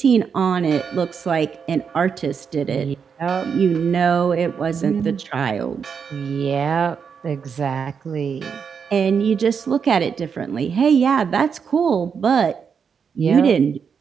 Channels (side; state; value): left; quieter; 6.5 dB